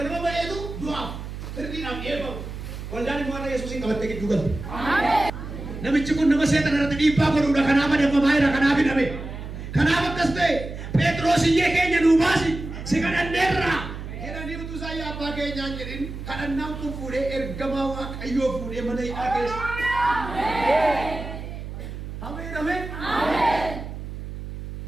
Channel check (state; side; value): noise; right; hum, 9 dB below the sound